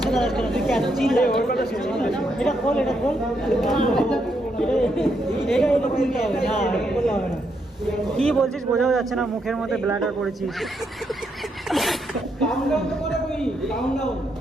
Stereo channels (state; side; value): normal; both; correlation 0.78